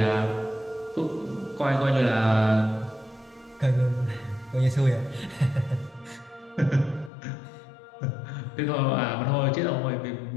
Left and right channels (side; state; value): right; drops out; at 7.1 s